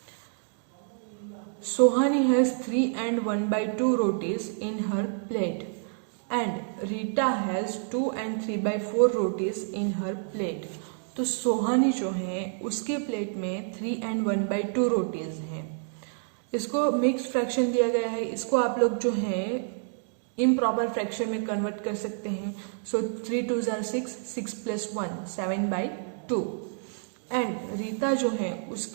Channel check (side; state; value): left; silent; digital silence